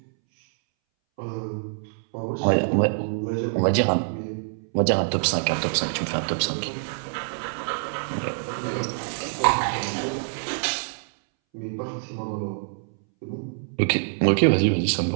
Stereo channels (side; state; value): left; silent; 61 dB below the other